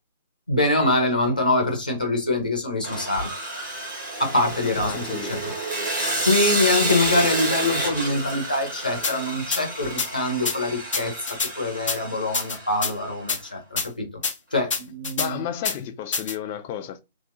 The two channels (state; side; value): inverted; both; correlation -0.42